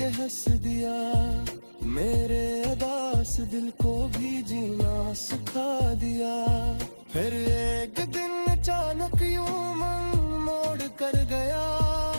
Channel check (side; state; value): both; inverted; correlation -1.00